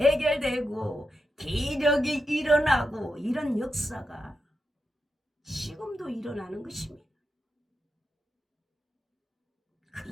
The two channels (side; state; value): both; normal; correlation 0.87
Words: 기적이 일어나고 이런 역사가 지금도 일어나는 것입니다.